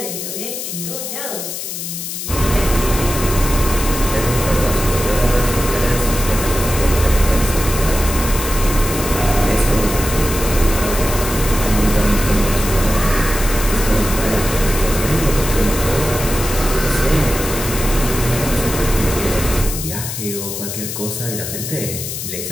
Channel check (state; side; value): noise; left; hiss, 6 dB below the sound